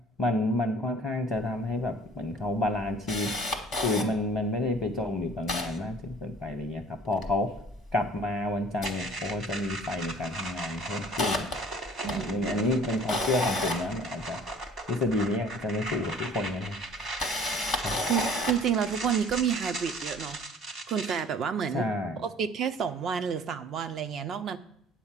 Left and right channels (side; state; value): both; normal; correlation 0.50